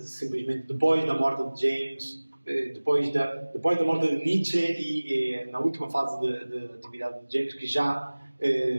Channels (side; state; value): both; inverted; correlation -1.00